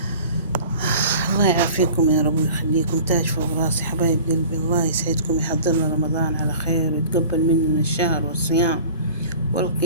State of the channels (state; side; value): inverted; both; correlation -0.43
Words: الله يعافيكم يا رب ويخليكم، تاج فوق راسي حبايب قلبي. الله يسعدكم، يحضرنا رمضان على خير ويتقبل مننا الشهر والصيام